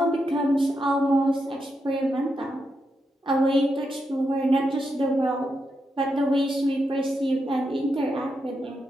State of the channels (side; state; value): both; normal; correlation 0.84